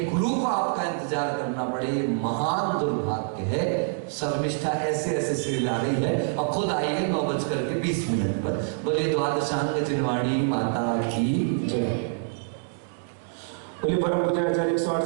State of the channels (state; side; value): silent; left; digital silence